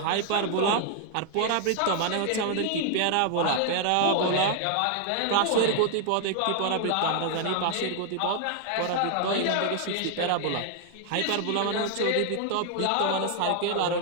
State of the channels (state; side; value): different; both; correlation 0.00